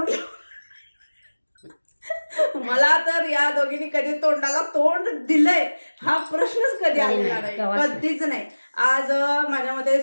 मला तर या दोघींनी कधी तोंडाला तोंड दिलंय हा प्रश्नच कधी आलेला नाही, कधीच नाही. आज माझ्या मते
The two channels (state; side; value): inverted; both; correlation -1.00